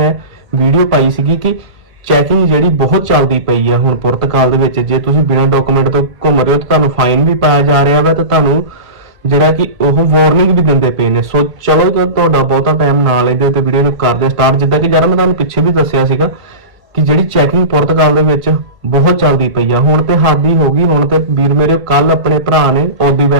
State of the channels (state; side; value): late; left; 1.5 ms